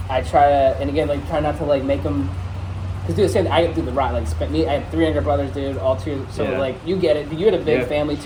I try to, and again, try not to make them, because do the same thing. I do the right, I have 3 younger brothers, dude, all 2, so you get it, you had a big family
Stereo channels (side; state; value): both; identical; correlation 1.00